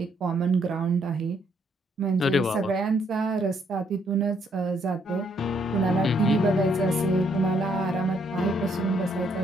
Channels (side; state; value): both; normal; correlation 0.71